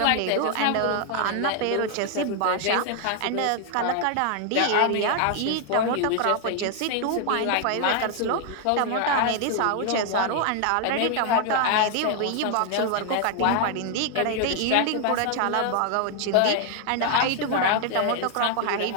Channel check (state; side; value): different; both; correlation 0.00